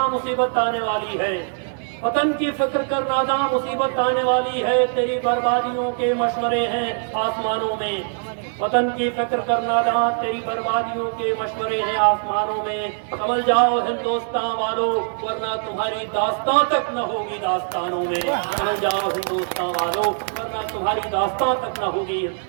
मुसीबत आने वाली है, वतन की फिक्र कर नादा मुसीबत आने वाली है, तेरी बर्बादियों के मशवरे हैं आसमानों में। वतन की फिक्र कर नादा, तेरी बर्बादियों के मशवरे हैं आसमानों में। समझ जाओ हिंदुस्तान वालों, वरना तुम्हारी दास्तां तक न होगी दास्तानों में। समझ जाओ हिंदुस्तान वालों, वरना तुम्हारी दास्तां तक न होगी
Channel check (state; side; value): silent; left; digital silence